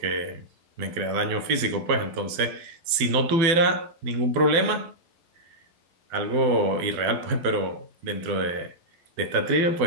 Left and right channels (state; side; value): late; left; 12 ms